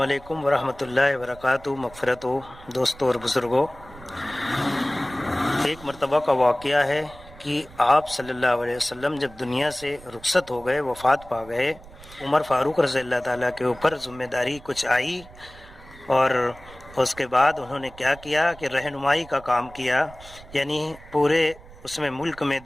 علیکم ورحمۃ اللہ وبرکاتہ۔ مغفرت ہو دوستوں اور بزرگوں، ایک مرتبہ کا واقعہ ہے کہ آپ صلی اللہ علیہ وسلم جب دنیا سے رخصت ہو گئے، وفات پا گئے، عمر فاروق رضی اللہ تعالیٰ کے اوپر ذمہ داری کچھ آئی، اور اس کے بعد انہوں نے کیا کیا کہ رہنمائی کا کام کیا، یعنی پورے اس میں ملک میں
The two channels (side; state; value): right; noise; rumble, 20 dB below the sound